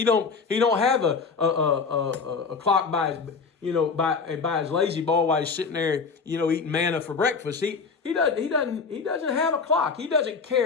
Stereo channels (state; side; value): quieter; right; 5.0 dB